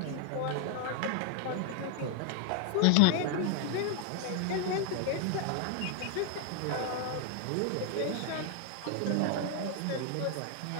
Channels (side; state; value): both; different; correlation 0.00